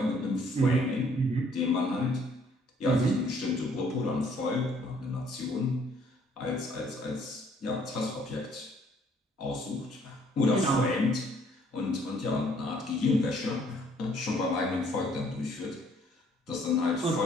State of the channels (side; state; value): both; normal; correlation 0.63